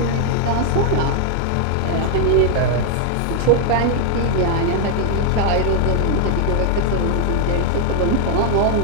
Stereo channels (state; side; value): different; both; correlation 0.00